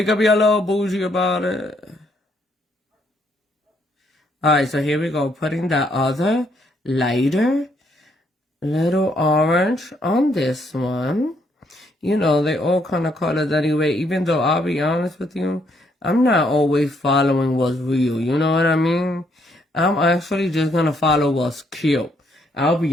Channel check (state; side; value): normal; both; correlation 0.71